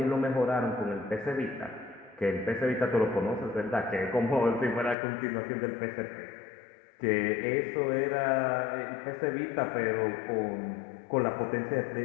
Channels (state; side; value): drops out; right; at 5.0 s